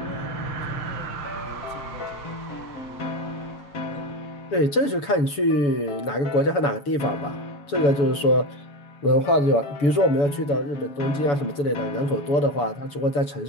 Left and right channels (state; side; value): late; right; 7.0 ms